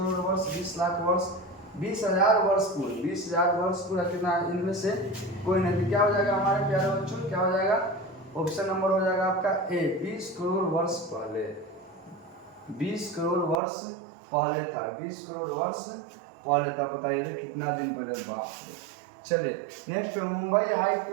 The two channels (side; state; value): left; drops out; at 13.6 s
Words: वर्ष, 20 लाख वर्ष, 20,000 वर्ष पूर्व। 20,000 वर्ष पूरा कितना? इनमें से कोई नहीं। क्या हो जाएगा हमारे प्यारे बच्चों? क्या हो जाएगा? ऑप्शन नंबर हो जाएगा आपका ए, 20 करोड़ वर्ष पहले। 20 करोड़ वर्ष पहले था, 20 करोड़ वर्ष पहले था। बताइए कितना दिन पहले? बाप रे। चलिए नेक्स्ट, मुंबई हाई